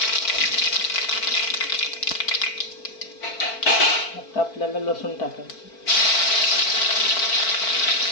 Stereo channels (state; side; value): late; right; 4.5 ms